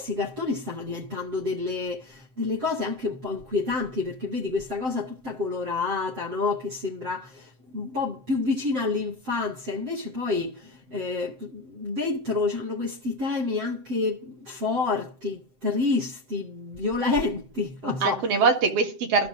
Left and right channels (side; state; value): left; late; 7.7 ms